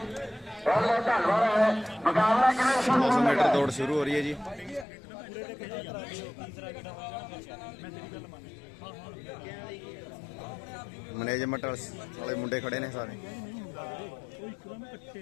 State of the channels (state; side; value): drops out; right; at 4.9 s